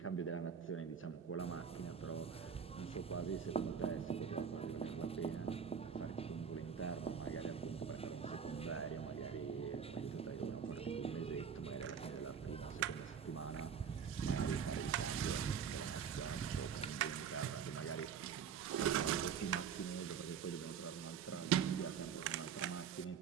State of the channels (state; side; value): quieter; left; 7.2 dB